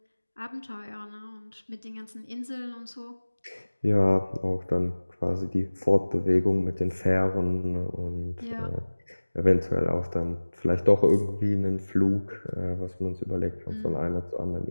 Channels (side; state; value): both; inverted; correlation -1.00